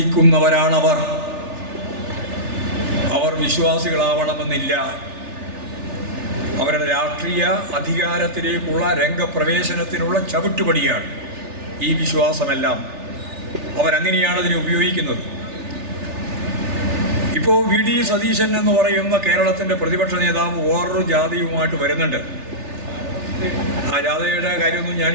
അവർ വിശ്വാസികളാവണമെന്നില്ല. അവരുടെ രാഷ്ട്രീയ അധികാരത്തിലേക്കുള്ള രംഗപ്രവേശനത്തിനുള്ള ചവിട്ടുപടിയാണ് ഈ വിശ്വാസമെല്ലാം. അവരങ്ങനെയാണ് അതിനെ ഉപയോഗിക്കുന്നത്. ഇപ്പോൾ വി ഡി സതീശൻ എന്ന് പറയുന്ന കേരളത്തിൻ്റെ പ്രതിപക്ഷ നേതാവ് വേറൊരു ജാഥയുമായിട്ട് വരുന്നുണ്ട്. ആ ജാഥയുടെ കാര്യമൊന്നും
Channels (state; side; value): late; left; 3.4 ms